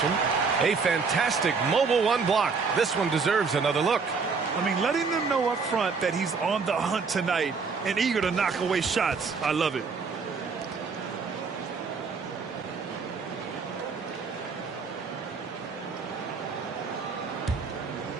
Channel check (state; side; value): quieter; left; 5.0 dB